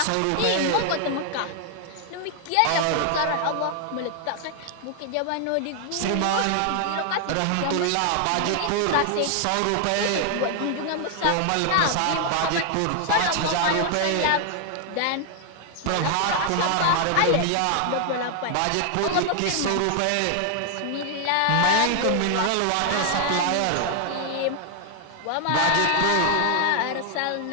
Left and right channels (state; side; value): different; both; correlation 0.00